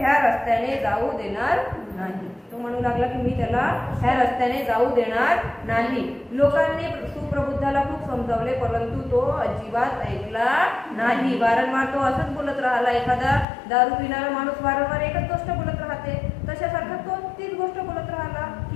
रस्त्याने जाऊ देणार नाही. तो म्हणू लागला की मी त्याला ह्या रस्त्याने जाऊ देणार नाही. लोकांनी सुप्रबुद्धाला खूप समजावले परंतु तो अजिबात ऐकला नाही. वारंवार तो असंच बोलत राहिला. एखादा दारू पिणारा माणूस वारंवार एकच गोष्ट बोलत राहते, तशासारखा तो तीच गोष्ट बोलत राहिला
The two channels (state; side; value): drops out; right; at 13.5 s